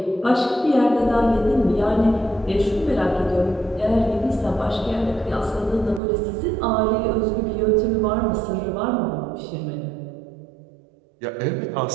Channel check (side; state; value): left; drops out; at 6.0 s